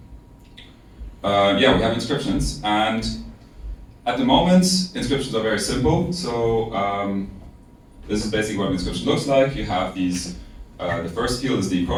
yeah, we have inscriptions, and at the moment inscriptions are very simple. So this is basically what an inscription looks like. You have these, the first field is the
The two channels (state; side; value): identical; both; correlation 1.00